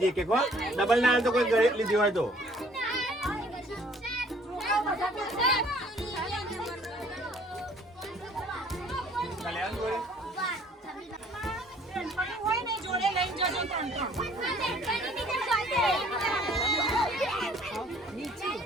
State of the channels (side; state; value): both; normal; correlation 0.58